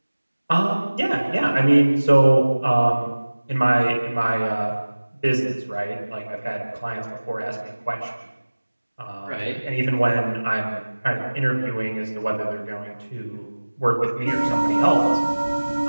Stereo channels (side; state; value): both; inverted; correlation -1.00